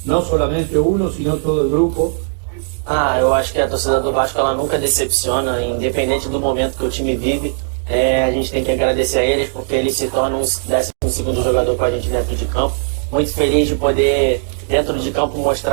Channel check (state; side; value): silent; left; digital silence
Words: no solamente uno, sino todo el grupo. Eu acho que a torcida do Vasco ela nunca decepciona, independente do momento que o time vive. A gente tem que agradecer a eles porque eles se tornam um 12º jogador com a gente dentro de campo. Muito feliz de poder, dentro de campo,